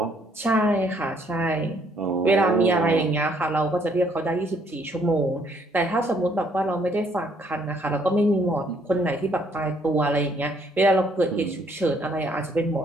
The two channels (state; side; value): normal; both; correlation 0.66